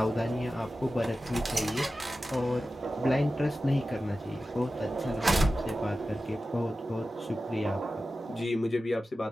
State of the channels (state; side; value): normal; both; correlation 0.94